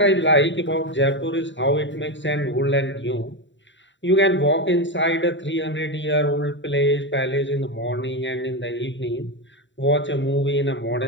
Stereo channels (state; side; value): late; right; 0.54 ms